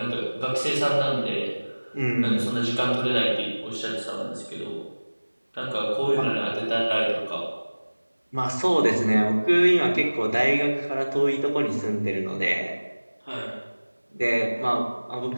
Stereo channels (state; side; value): inverted; both; correlation -1.00